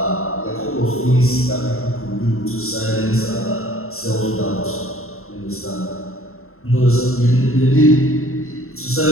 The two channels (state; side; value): late; right; 0.62 ms